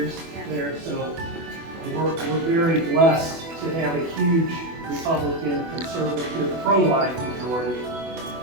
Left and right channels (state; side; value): late; left; 24 ms